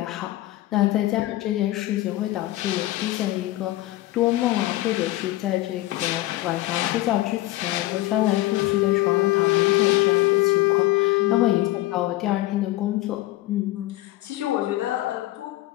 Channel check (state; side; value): quieter; right; 17.0 dB